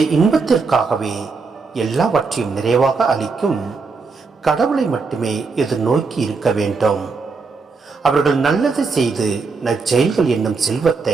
இன்பத்திற்காகவே எல்லாவற்றையும் நிறைவாக அளிக்கும் கடவுளை மட்டுமே எதிர்நோக்கி இருக்க வேண்டும். அவர்கள் நல்லது செய்து நற்செயல்கள் என்னும்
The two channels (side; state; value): left; quieter; 4.5 dB